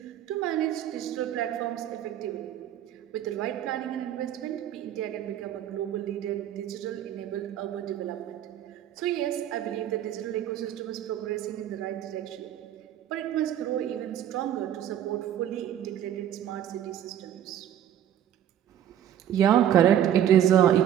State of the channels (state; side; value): quieter; left; 10.7 dB